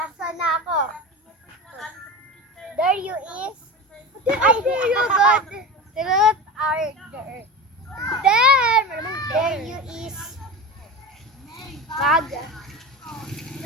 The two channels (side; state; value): both; normal; correlation 0.26